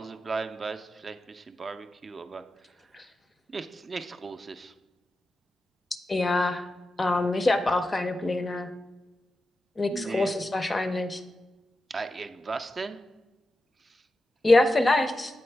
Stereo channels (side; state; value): both; normal; correlation 0.91